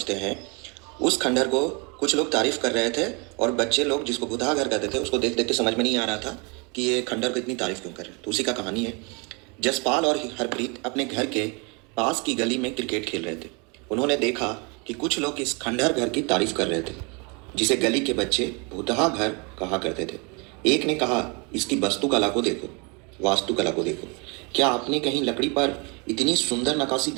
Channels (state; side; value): quieter; left; 31.1 dB